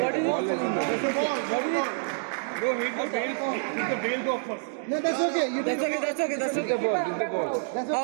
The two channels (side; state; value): left; silent; digital silence